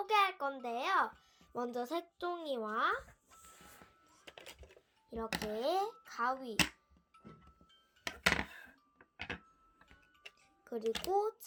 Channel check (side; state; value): both; identical; correlation 1.00